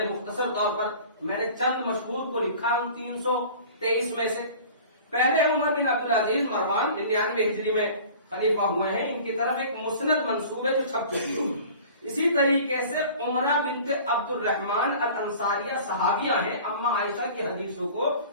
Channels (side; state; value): both; inverted; correlation -0.44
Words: مختصر طور پر میں نے چند مشہور کو لکھا ان 323 میں سے۔ پہلے عمر بن عبدالعزیز مروان 99 ہجری میں خلیفہ ہوئے ہیں، ان کی طرف ایک مسند منسوب ہے جو چھپ چکی ہے۔ اسی طریقے سے عمرہ بنت عبد الرحمن الانصاریہ صحابیہ ہیں، اما عائشہ کی حدیثوں کو